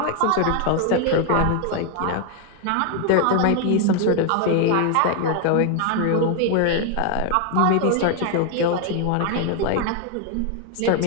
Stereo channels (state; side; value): different; both; correlation 0.01